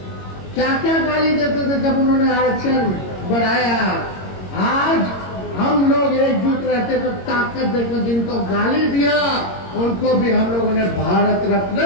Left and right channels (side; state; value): right; late; 22 ms